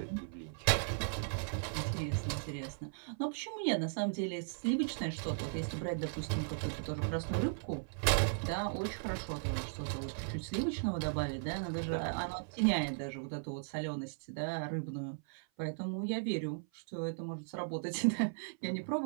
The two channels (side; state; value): left; silent; 53 dB below the other